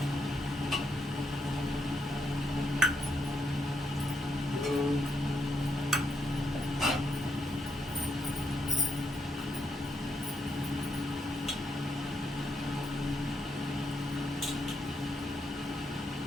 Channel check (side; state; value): both; normal; correlation 0.80